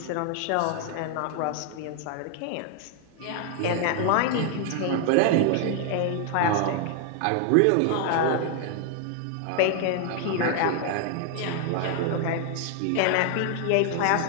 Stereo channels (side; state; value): both; different; correlation 0.00